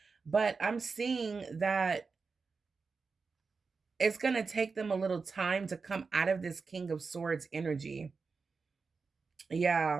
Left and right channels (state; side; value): quieter; left; 4.7 dB